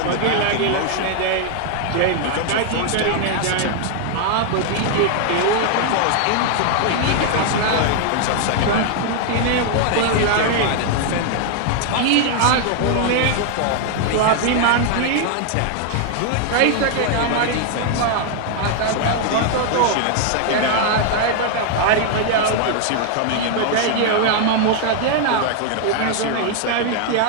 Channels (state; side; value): different; both; correlation 0.00